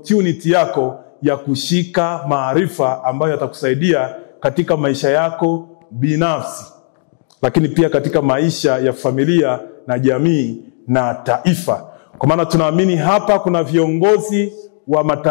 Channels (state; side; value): silent; right; digital silence